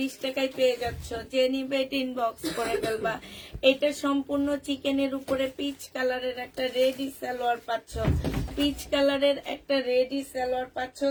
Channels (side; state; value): both; identical; correlation 1.00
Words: টাকায় পেয়ে যাচ্ছ, যে নিবে ইনবক্স করে ফেলবা। এটা সম্পূর্ণ চিকেনের উপরে পিচ কালারের একটা রেডি সালোয়ার পাচ্ছ, পিচ কালারের একটা রেডি সালোয়ার পাচ্ছ।